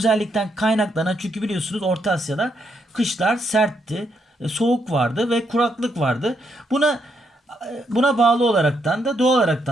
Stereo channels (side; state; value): both; normal; correlation 0.77